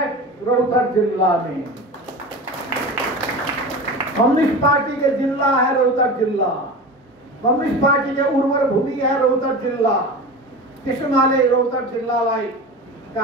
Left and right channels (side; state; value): both; normal; correlation 0.30